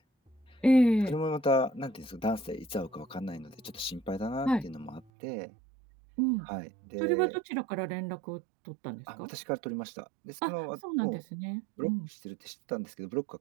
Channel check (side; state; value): left; drops out; at 5.1 s